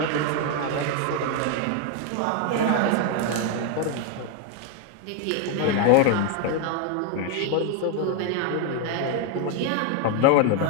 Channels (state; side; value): different; both; correlation 0.01